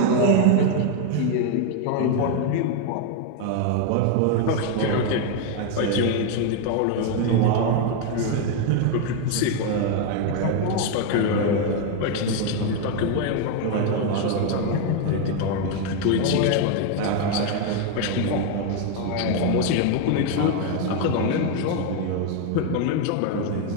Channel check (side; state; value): both; different; correlation 0.01